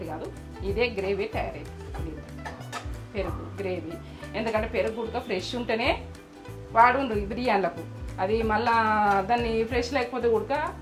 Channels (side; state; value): both; identical; correlation 1.00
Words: కాదు. ఇదే గ్రేవీ తయారైంది దీంతో. పెరుగు గ్రేవీ, ఎందుకంటే పెరుగు ఉడక ఫ్రెష్ ఉంటేనే వాడుండ్రు ఈ బిర్యానీలకు. అది మళ్ళా దాన్ని ఫ్రెష్ లేకపోతే ఉడక